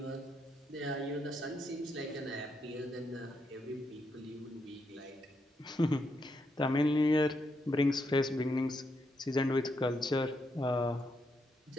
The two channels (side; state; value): both; normal; correlation 0.80